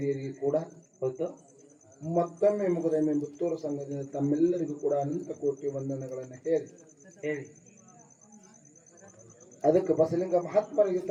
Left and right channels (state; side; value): identical; both; correlation 1.00